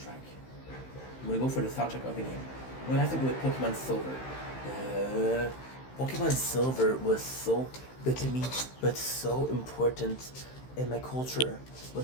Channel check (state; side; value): late; right; 15 ms